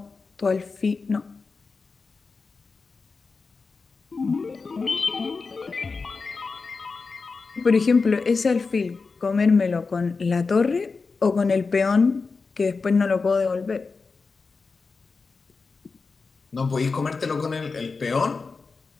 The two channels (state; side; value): quieter; right; 4.4 dB